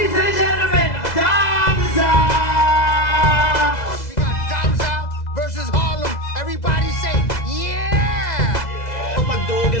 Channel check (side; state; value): right; late; 2.0 ms